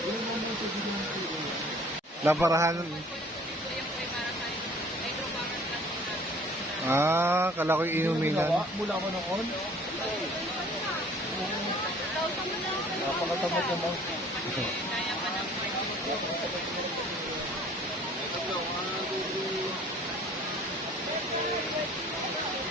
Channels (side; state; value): both; normal; correlation 0.52